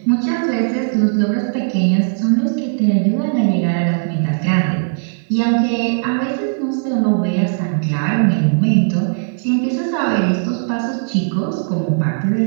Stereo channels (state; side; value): silent; left; digital silence